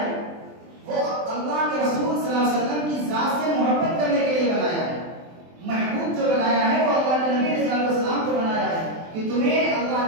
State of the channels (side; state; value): left; late; 23 ms